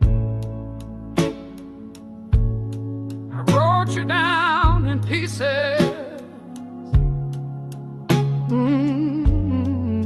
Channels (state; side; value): identical; both; correlation 1.00